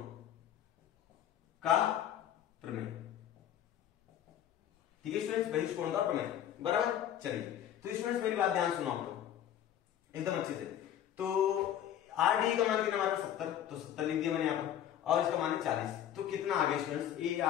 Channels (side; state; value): right; quieter; 10.6 dB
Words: का प्रमेय। ठीक है स्टूडेंट्स, बहिष्ठ कोण का प्रमेय, बराबर। चलिए, तो स्टूडेंट्स मेरी बात ध्यान सुनो आप लोग एकदम अच्छे से। तो आर डी का मान कितना हमारे पास 70, तो 70 लिख दिया मैंने यहां पर, और इसका मान है 40। तो कितना आ गया स्टूडेंट्स, ए